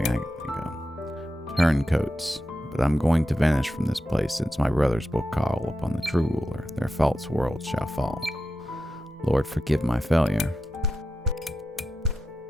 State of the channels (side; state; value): both; normal; correlation 0.90